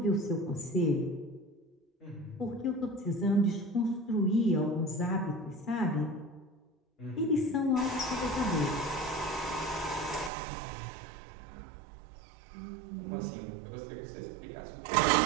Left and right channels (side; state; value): left; drops out; at 10.3 s